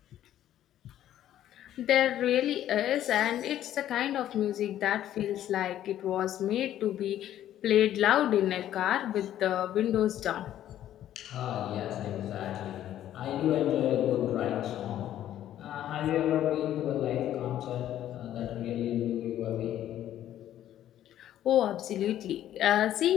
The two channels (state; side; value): quieter; right; 11.9 dB